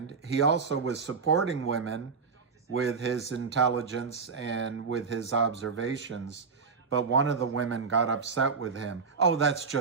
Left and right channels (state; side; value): quieter; left; 5.2 dB